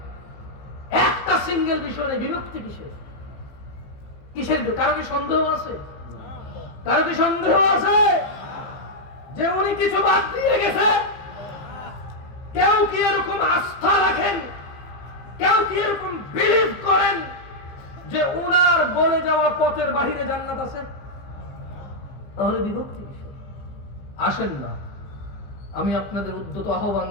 নেই, বিভক্তি কিসের? কিসের? কারো কি সন্দেহ আছে? কারো কি সন্দেহ আছে যে উনি কিছু বাদ দিয়ে গেছে? কেউ কি এরকম আস্থা রাখেন, কেউ কি এরকম বিলিভ করেন যে উনার বলে যাওয়া পথের বাহিরে জান্নাত আছে? তাহলে বিভক্তি কিসের? আসেন না, আমি আপনাদের উদ্যত আহ্বান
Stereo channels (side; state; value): right; late; 15 ms